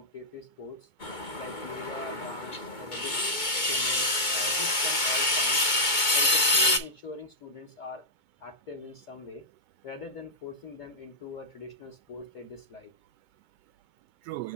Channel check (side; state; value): right; late; 2.2 ms